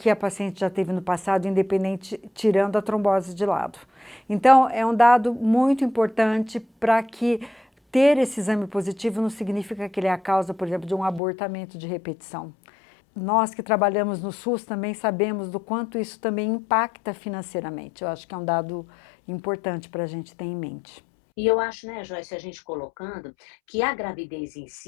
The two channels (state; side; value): drops out; right; at 11.2 s